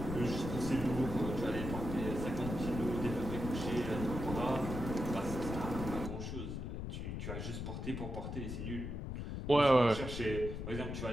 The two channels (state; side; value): noise; left; rumble, 5 dB below the sound